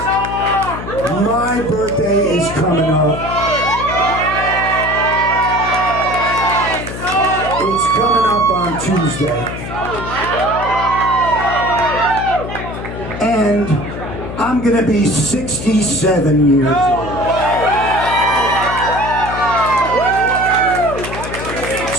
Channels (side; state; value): left; noise; hum, 8 dB below the sound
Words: my birthday is coming up. It's coming up on Tuesday. And I'm going to be 67 years old.